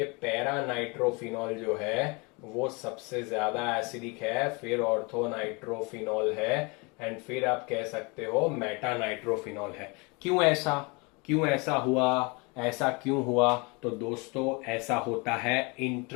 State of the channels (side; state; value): right; quieter; 29.2 dB